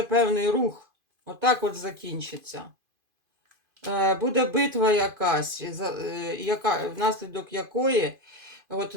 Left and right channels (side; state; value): left; late; 2.5 ms